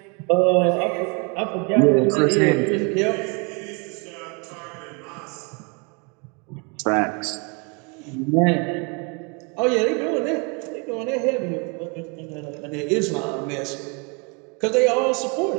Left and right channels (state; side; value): quieter; left; 32.5 dB